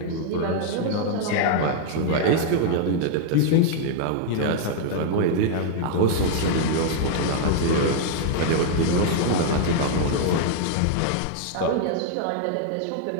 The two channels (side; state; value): both; different; correlation 0.00